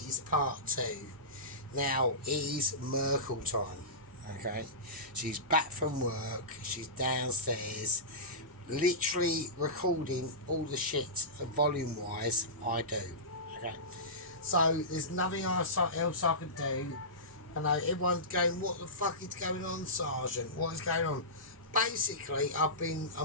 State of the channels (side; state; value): both; normal; correlation -0.20